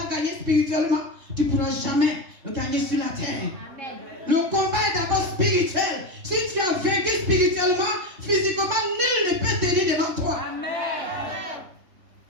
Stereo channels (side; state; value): left; late; 2.9 ms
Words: gagnée spirituellement, tu ne pourras jamais le gagner sur la terre. Amen. Le combat est d'abord spirituel. Si tu as vaincu spirituellement, physiquement, nul ne peut tenir devant toi. Amen.